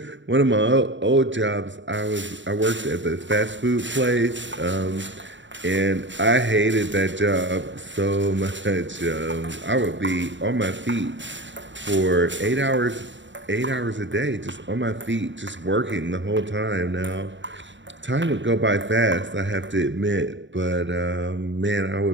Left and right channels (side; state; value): left; late; 0.54 ms